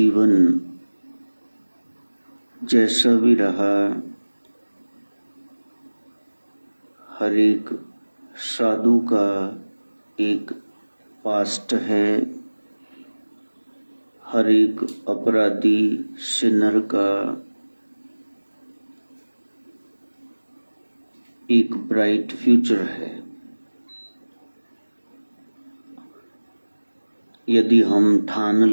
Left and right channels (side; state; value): both; inverted; correlation -1.00